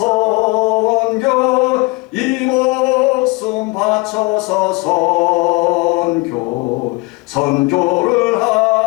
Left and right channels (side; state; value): right; quieter; 25.7 dB